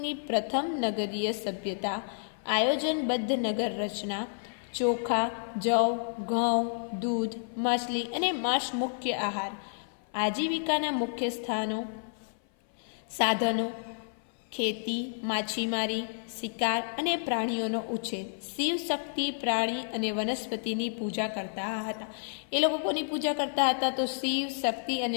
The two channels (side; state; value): right; silent; 55 dB below the other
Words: પ્રથમ નગરીય સભ્યતા, આયોજનબદ્ધ નગર રચના, ચોખા, જવ, ઘઉં, દૂધ, માછલી અને માંસ મુખ્ય આહાર. આજીવિકાના મુખ્ય સાધનો ખેતી, માછીમારી, શિકાર અને પ્રાણીઓનો ઉછેર. શિવ શક્તિ, પ્રાણી અને વનસ્પતિની પૂજા કરતા હતા. એ લોકો કોની પૂજા કરતા હતા, તો શિવ શક્તિ